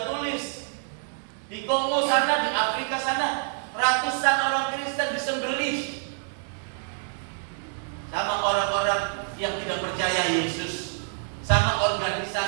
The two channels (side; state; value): left; silent; digital silence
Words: tulis. Di Kongo sana, di Afrika sana, ratusan orang Kristen disembelih sama orang-orang yang tidak percaya Yesus, sama